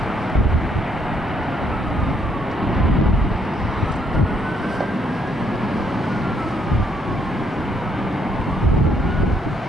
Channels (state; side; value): normal; both; correlation 0.71